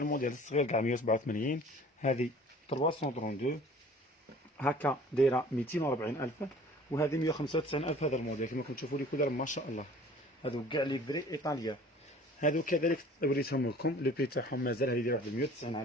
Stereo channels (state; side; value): normal; both; correlation 0.48